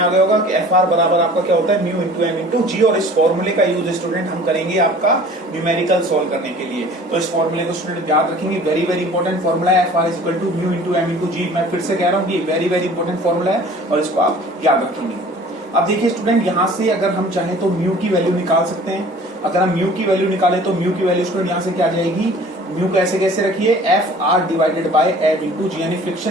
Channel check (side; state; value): both; normal; correlation 0.47